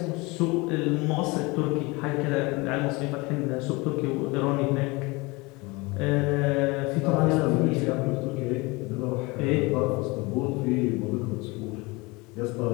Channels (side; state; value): right; quieter; 24.9 dB